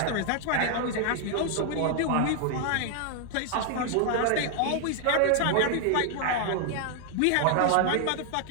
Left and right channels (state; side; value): different; both; correlation 0.00